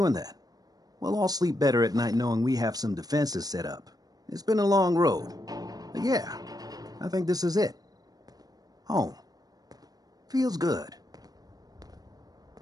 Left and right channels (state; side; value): late; left; 0.19 ms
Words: that. We'll all sleep better at night knowing we have some defenses set up. It's been a long road. But yeah, I think this is it. Home. Feels good.